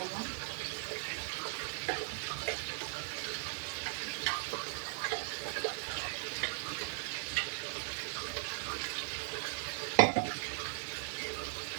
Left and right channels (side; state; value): left; silent; digital silence